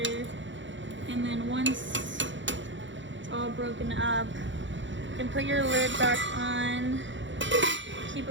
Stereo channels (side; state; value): left; late; 0.54 ms